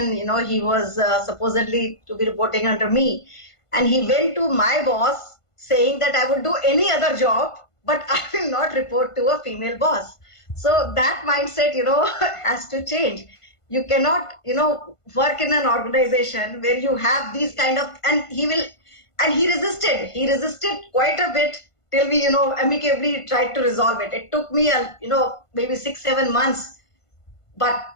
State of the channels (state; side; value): late; right; 1.5 ms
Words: he was supposedly to be reporting under me, and he went to my boss saying that I would do any other job, but I will not report to a female boss. So that mindset, has to change. You cannot, work in an organization where you have these kind of, and he resisted quite a bit till we, amicably tried to resolve it. It took me, maybe 6-7 months, but